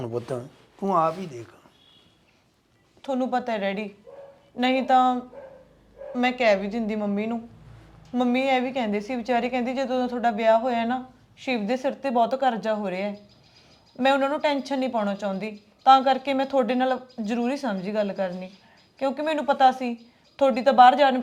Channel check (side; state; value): both; identical; correlation 1.00